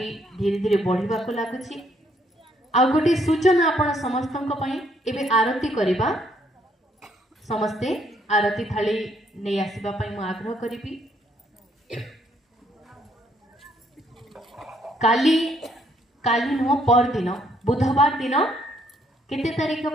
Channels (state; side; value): normal; both; correlation 0.69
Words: धीरे धीरे बढ़िबा को लागुची आ गोटे सूचना आपण समस्तंक पई एबे आरती करिबा समस्ते आरती थाली नहीं आसवा मु आग्रह करी काली काली नुह पर दिन बुधवार दिन केते तारीख